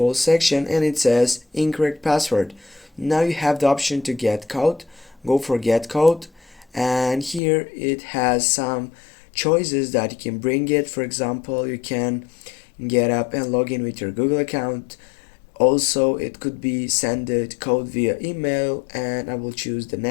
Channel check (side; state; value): right; drops out; at 7.4 s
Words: section, and it says incorrect password. Now you have the option to get code. Go for get code, and here it has some choices that you can bring it. For example, you can get up and log in with your Google account. Also, it could be send the code via email, and I will choose the